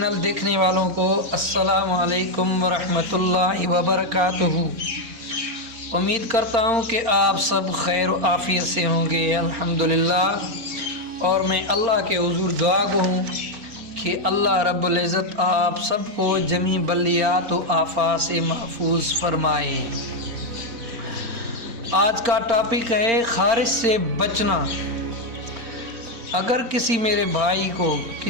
دیکھنے والوں کو السلام علیکم ورحمۃ اللہ وبرکاتہ۔ امید کرتا ہوں کہ آپ سب خیر و عافیت سے ہوں گے، الحمدللہ۔ اور میں اللہ کے حضور دعا گو ہوں کہ اللہ رب العزت آپ سب کو جمیع بلیات و آفات سے محفوظ فرمائے۔ آج کا ٹاپک ہے خارش سے بچنا۔ اگر کسی میرے بھائی کو،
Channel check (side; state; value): left; late; 4.3 ms